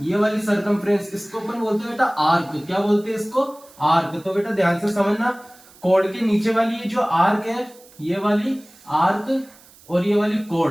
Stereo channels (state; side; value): noise; right; hiss, 25 dB below the sound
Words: ये वाली सर्कमफ्रेंस, इसको अपन बोलते हैं बेटा आर्क। क्या बोलते हैं इसको, आर्क। तो बेटा ध्यान से समझना, कोड के नीचे वाली ये जो आर्क है, ये वाली आर्क और ये वाली